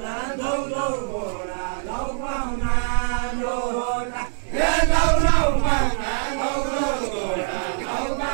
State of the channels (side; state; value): left; silent; 63 dB below the other